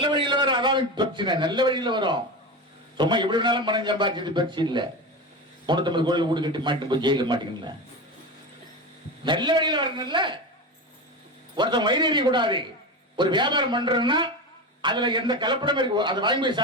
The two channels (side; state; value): both; normal; correlation 0.23